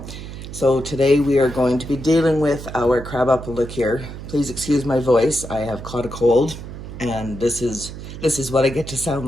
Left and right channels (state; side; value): noise; right; hum, 11 dB below the sound